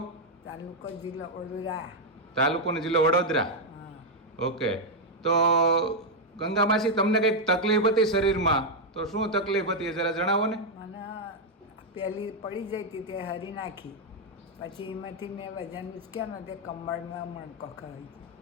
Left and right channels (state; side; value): normal; both; correlation 0.00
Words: તાલુકો જિલ્લો વડોદરા. તાલુકો ને જિલ્લો વડોદરા. ઓકે. તો ગંગા માસી, તમને કઈક તકલીફ હતી શરીરમાં, તો શું તકલીફ હતી એ જરા જણાવો ને. મને પહેલી પડી જઈ હતી તે હરી નાખી, પછી એમાંથી મેં વજન ઉચક્યા ને તે કમરમાં મણકો ખાઈ